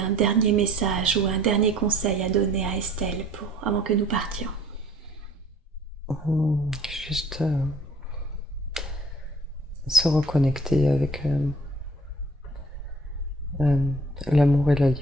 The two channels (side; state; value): both; normal; correlation 0.54